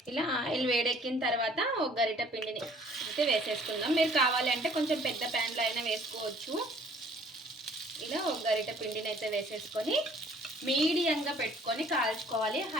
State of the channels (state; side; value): normal; both; correlation 0.56